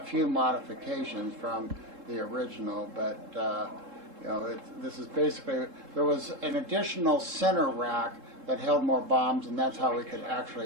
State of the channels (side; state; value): left; late; 3.7 ms